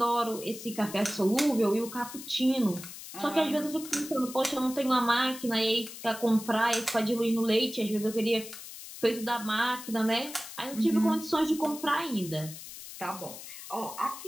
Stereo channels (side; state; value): left; noise; hiss, 13 dB below the sound